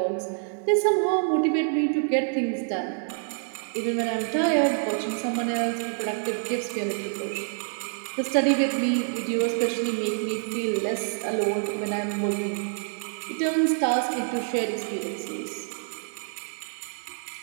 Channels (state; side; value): silent; left; 60 dB below the other